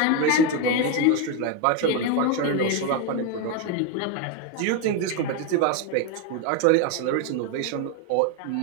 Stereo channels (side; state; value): both; different; correlation 0.02